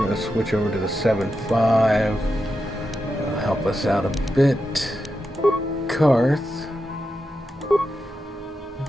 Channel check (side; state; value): both; normal; correlation 0.88